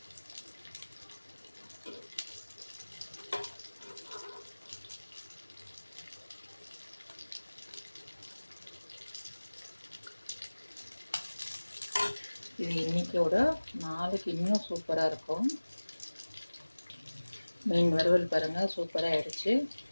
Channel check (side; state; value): both; inverted; correlation -1.00